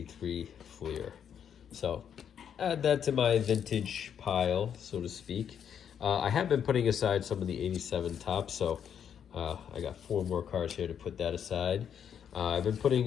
Fleer. So add that to my vintage pile, so to speak. I have been putting aside some of the 87 Topps, so I got 4 more cards here to put that aside. I've been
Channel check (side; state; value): right; quieter; 8.4 dB